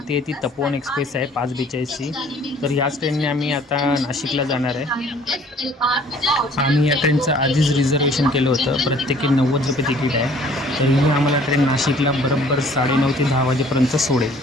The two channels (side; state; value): both; normal; correlation 0.55